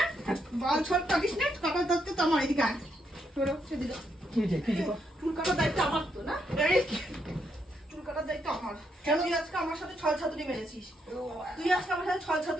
বাল ছল কাটিস না, কপাল ধরতে তো আমার এদিকে আয়। সরো, সেদিকে। কি যে কি যে চুল কাটার দায়িত্ব আমার তো না, এই চুল কাটার দায়িত্ব আমার। কেন তুই আজকে আমার সাথে ছল ছাতুরি মেরেছিস? তুই আজকে আমার সাথে ছল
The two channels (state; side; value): normal; both; correlation 0.78